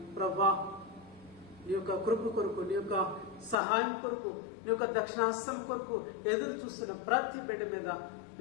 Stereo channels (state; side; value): drops out; right; at 3.6 s